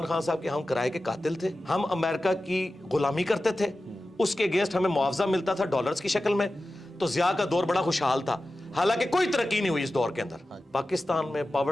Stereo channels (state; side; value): normal; both; correlation 0.94